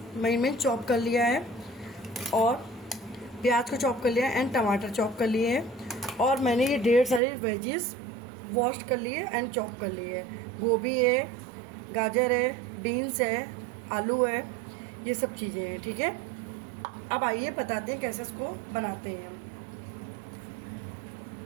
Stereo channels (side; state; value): left; drops out; at 7.2 s